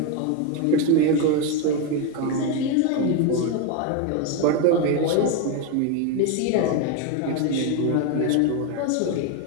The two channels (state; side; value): different; both; correlation 0.02